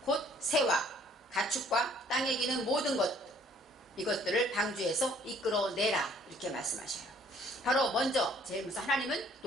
곧 새와 가축과 땅에 기는 모든 것 이것들을 방주에서 이끌어내라 이렇게 말씀하셔요. 바로 먼저 제일 먼저 하나님은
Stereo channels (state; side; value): normal; both; correlation 0.59